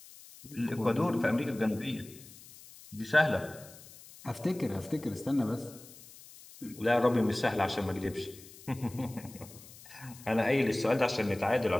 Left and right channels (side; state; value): left; noise; hiss, 19 dB below the sound